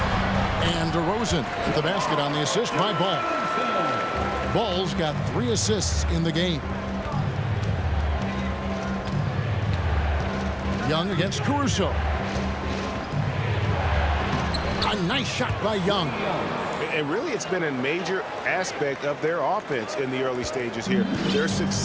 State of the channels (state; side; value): identical; both; correlation 1.00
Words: And DeRozan at the basket on the assist by Ball. Ball's got 3 assists in the game. Young against Caruso. A nice shot by Young. And really, it's been a major aspect of their offense in the early stages here. Their